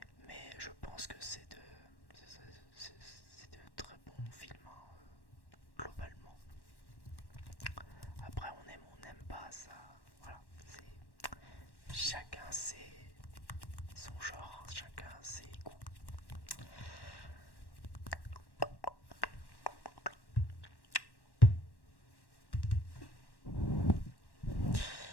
chacun son genre, chacun ses goûts.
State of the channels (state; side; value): late; right; 1.1 ms